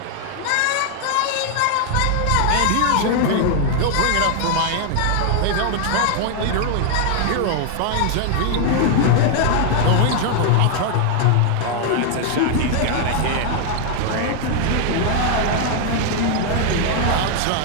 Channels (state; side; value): different; both; correlation 0.00